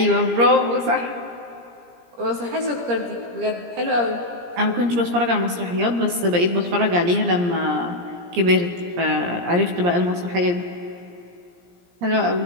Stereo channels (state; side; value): late; left; 17 ms